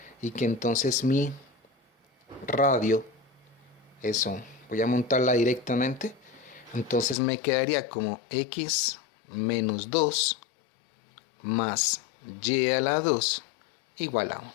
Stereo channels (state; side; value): drops out; right; at 7.2 s